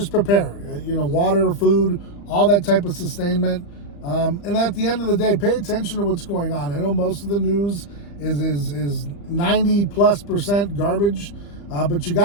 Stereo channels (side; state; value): right; late; 35 ms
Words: prepare, water, food, all that type of sustainment. And at the end of the day, pay attention to what's going on. I know most of the news is 90+% garbage, but you